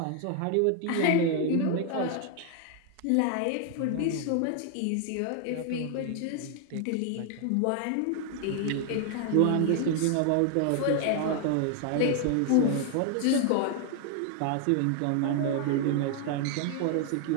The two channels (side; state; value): both; different; correlation 0.00